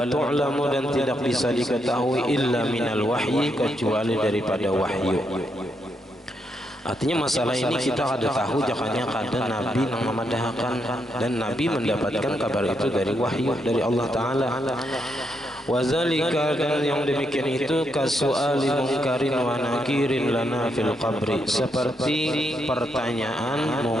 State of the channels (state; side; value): normal; both; correlation 0.79